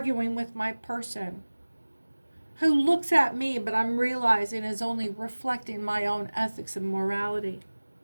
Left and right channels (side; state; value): both; inverted; correlation -1.00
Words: with my person who looks at me, but I'm realizing is only reflecting my own ethics and morality.